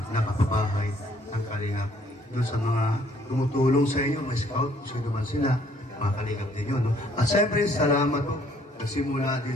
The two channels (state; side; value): normal; both; correlation 0.63